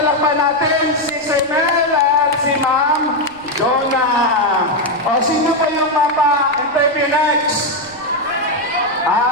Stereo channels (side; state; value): right; noise; rumble, 26 dB below the sound